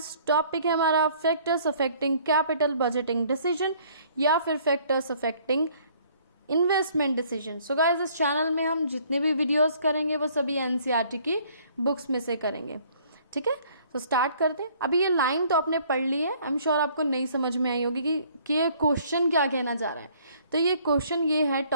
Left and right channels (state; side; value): inverted; both; correlation -0.59